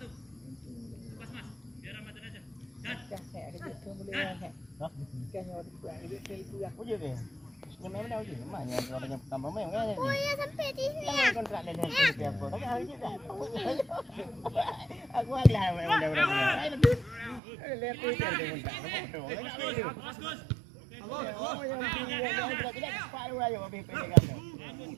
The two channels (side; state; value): left; drops out; at 17.4 s